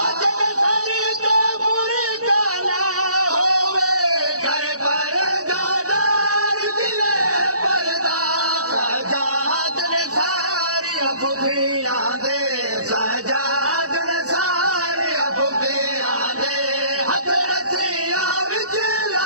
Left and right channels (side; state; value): left; late; 0.66 ms